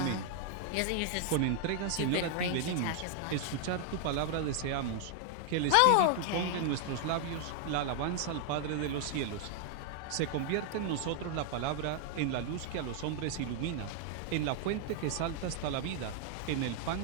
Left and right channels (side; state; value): both; different; correlation 0.00